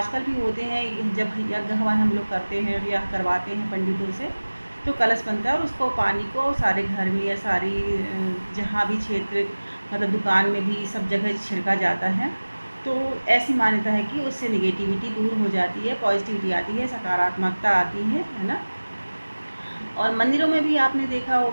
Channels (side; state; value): both; inverted; correlation -1.00